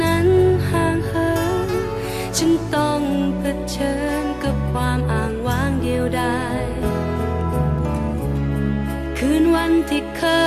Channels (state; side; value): identical; both; correlation 1.00